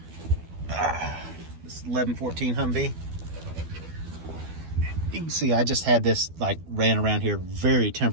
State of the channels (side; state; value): left; late; 12 ms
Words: this 1114 Humvee. You can see I just had this like ran around here very